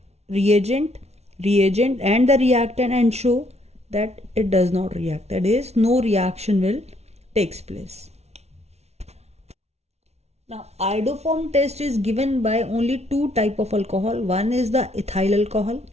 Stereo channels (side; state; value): left; late; 0.31 ms